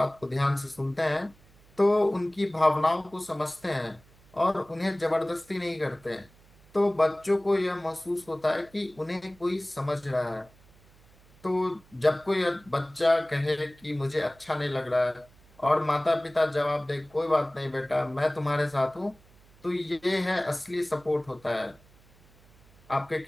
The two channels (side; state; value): right; noise; hum, 28 dB below the sound